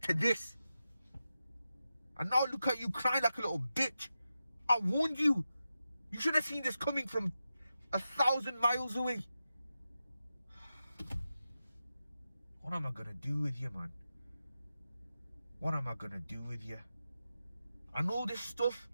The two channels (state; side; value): inverted; both; correlation -0.90